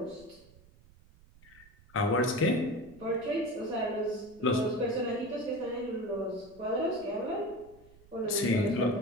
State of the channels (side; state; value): right; noise; rumble, 25 dB below the sound